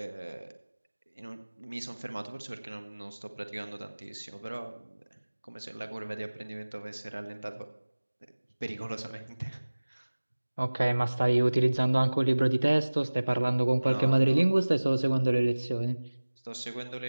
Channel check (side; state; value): both; inverted; correlation -1.00